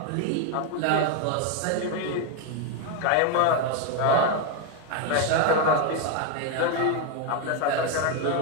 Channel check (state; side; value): different; both; correlation 0.01